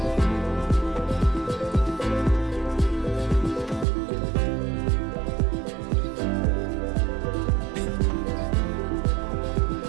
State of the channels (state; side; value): drops out; left; at 3.9 s